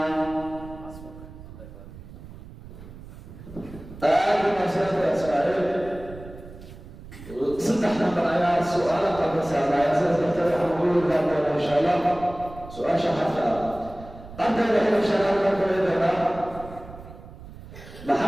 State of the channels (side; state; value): right; noise; rumble, 16 dB below the sound